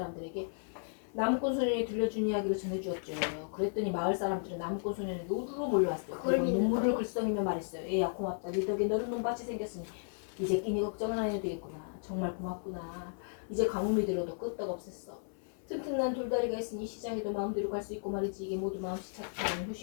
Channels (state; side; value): silent; right; 55 dB below the other